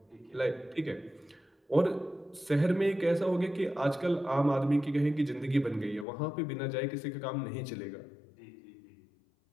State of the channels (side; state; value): right; drops out; at 6.1 s